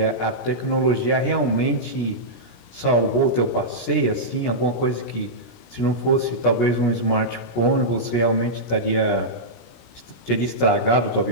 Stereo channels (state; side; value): late; right; 17 ms